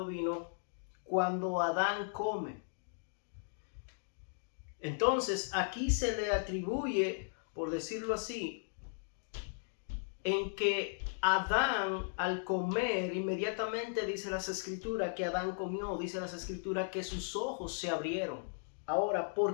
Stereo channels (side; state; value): right; silent; digital silence